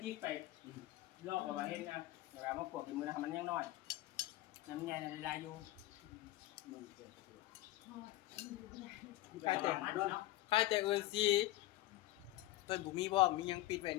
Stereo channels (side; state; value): right; quieter; 17.3 dB